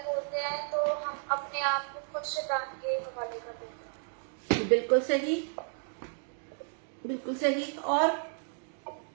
बोलते हैं तो हम अपने आप को खुद शैतान के हवाले कर देते हैं। बिल्कुल सही, बिल्कुल सही। और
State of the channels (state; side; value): silent; left; 56 dB below the other